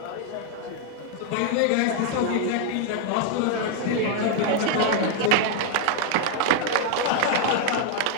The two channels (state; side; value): different; both; correlation 0.00